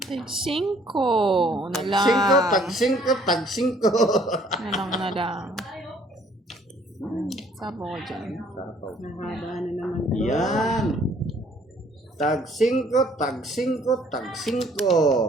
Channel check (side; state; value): both; normal; correlation 0.60